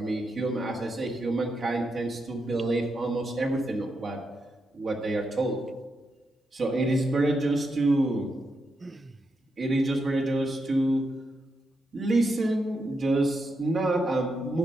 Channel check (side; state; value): both; normal; correlation 0.84